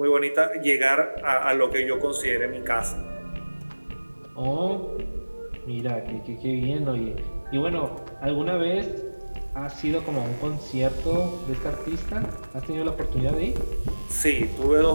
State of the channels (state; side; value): inverted; both; correlation -1.00